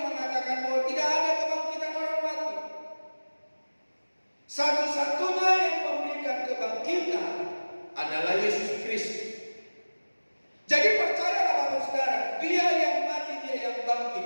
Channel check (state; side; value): inverted; both; correlation -1.00